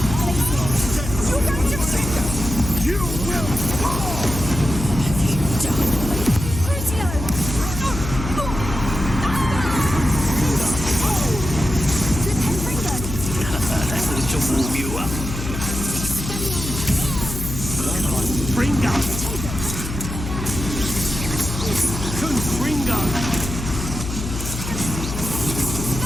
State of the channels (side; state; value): left; noise; hum, 6 dB below the sound